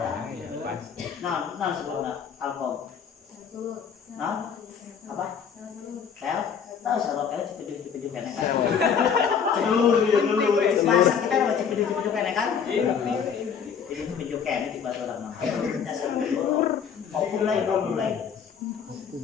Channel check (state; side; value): quieter; right; 7.1 dB